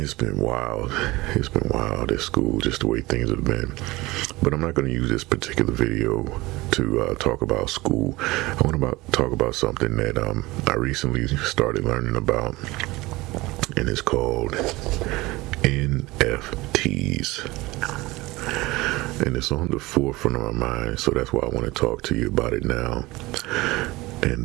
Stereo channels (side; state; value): left; quieter; 20.7 dB